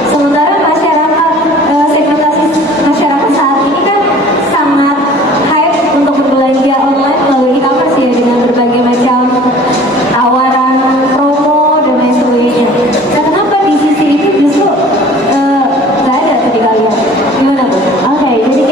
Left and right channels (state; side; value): normal; both; correlation 0.48